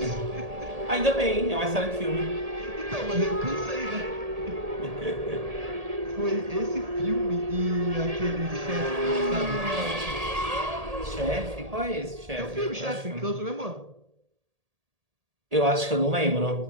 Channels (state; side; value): late; left; 1.8 ms